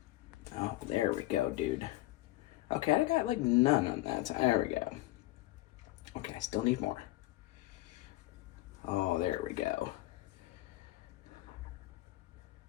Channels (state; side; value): quieter; right; 17.5 dB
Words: Oh, there we go, dude. Okay, I got like none on that. There we go. Okay, I still need more. Oh, there we go.